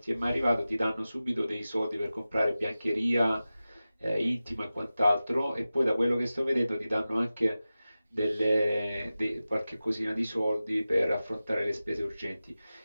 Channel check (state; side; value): inverted; both; correlation -0.95